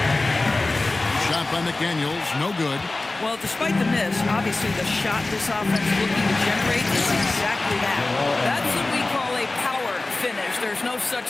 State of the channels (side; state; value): right; quieter; 3.1 dB